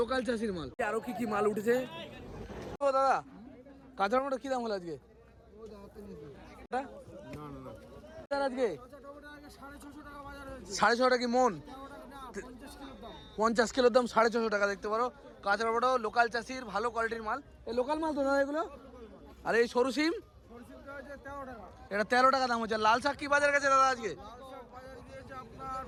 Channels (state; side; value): identical; both; correlation 1.00